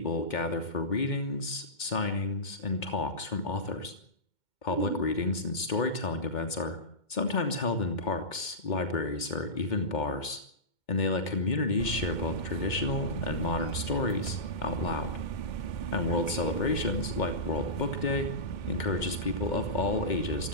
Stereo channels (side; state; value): right; late; 2.2 ms